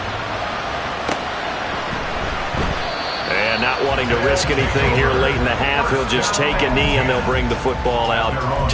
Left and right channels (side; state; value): both; identical; correlation 1.00